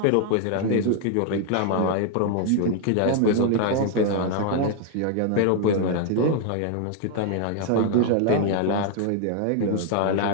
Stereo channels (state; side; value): different; both; correlation 0.00